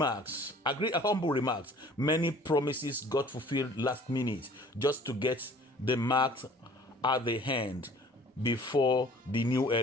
Many promises got fulfilled last minute just to get the marks at the hand before the new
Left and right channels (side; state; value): both; normal; correlation 0.51